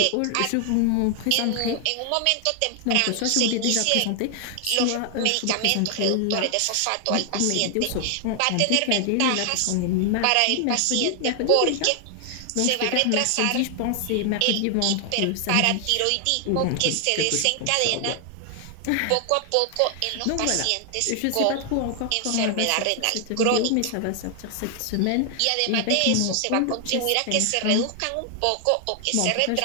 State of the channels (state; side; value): different; both; correlation 0.00